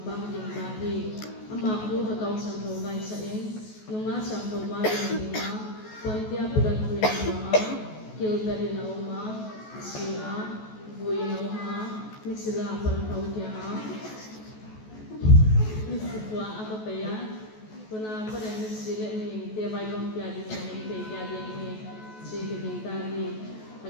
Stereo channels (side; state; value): right; late; 14 ms